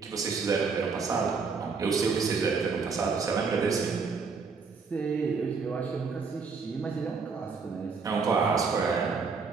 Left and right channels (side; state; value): left; quieter; 5.0 dB